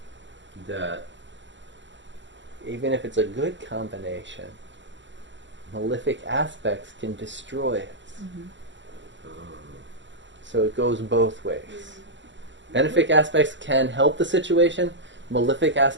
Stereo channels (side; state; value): left; late; 0.54 ms